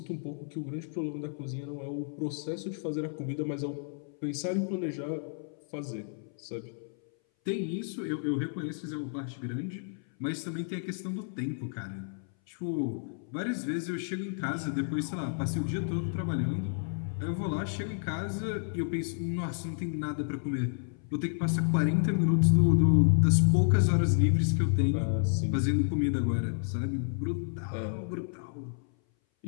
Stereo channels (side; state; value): right; silent; 57 dB below the other